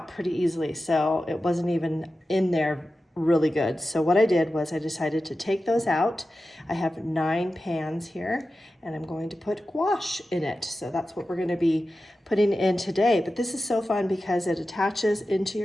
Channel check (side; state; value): both; normal; correlation 0.93